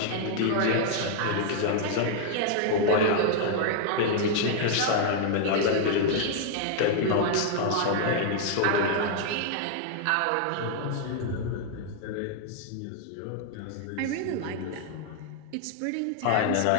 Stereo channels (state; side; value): different; both; correlation 0.00